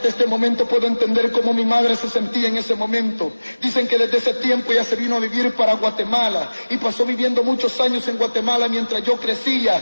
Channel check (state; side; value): inverted; both; correlation -1.00